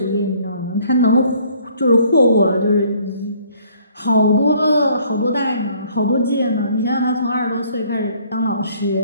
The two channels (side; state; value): both; inverted; correlation -0.60